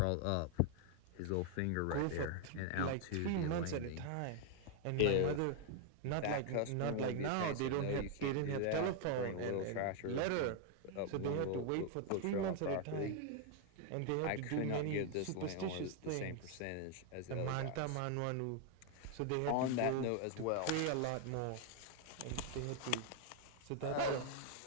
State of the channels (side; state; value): both; different; correlation 0.00